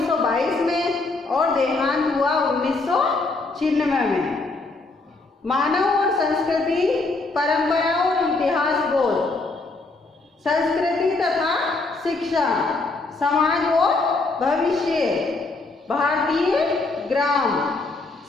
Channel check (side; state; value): right; quieter; 3.5 dB